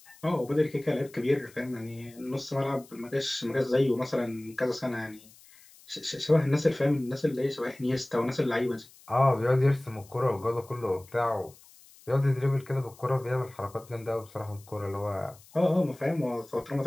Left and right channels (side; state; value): left; noise; hiss, 24 dB below the sound